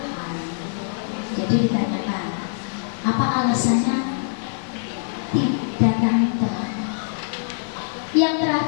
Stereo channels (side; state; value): right; silent; digital silence